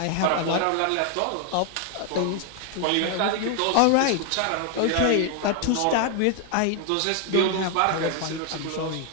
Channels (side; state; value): both; different; correlation 0.00